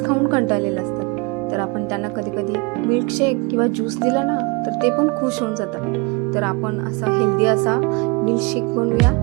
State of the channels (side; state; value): left; quieter; 26.3 dB